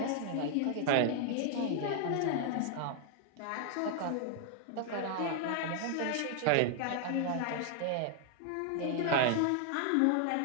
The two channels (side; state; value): both; different; correlation 0.00